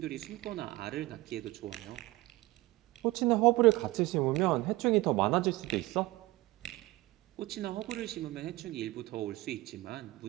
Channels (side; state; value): left; quieter; 19.9 dB